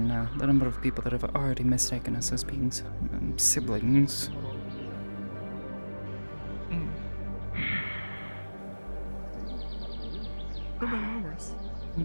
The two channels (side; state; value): both; inverted; correlation -1.00